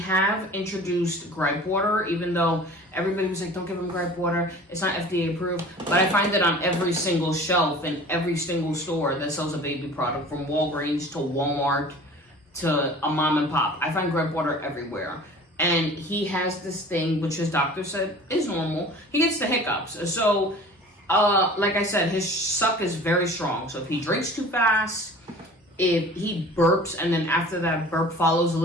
introduced gripe water, even though everybody was like, don't give him gripe water. It's not FDA approved. But I find it on every single shelf in every single store that sells a baby product, from Walgreens to Walmart to a mom and pop. I find gripe water everywhere. And he has this thing, which his doctor said is normal. He gets the hiccups. So, like I said, his suck is very strong. So if he drinks too fast, if he burps and then after that burp follows a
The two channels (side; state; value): both; normal; correlation 0.44